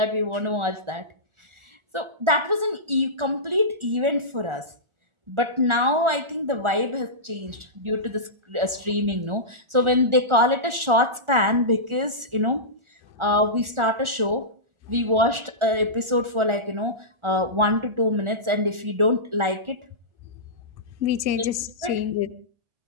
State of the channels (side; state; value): left; late; 1.4 ms